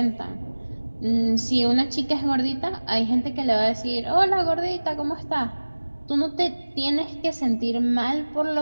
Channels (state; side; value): inverted; both; correlation -1.00